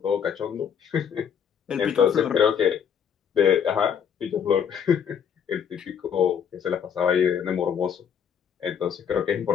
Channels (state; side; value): quieter; right; 7.8 dB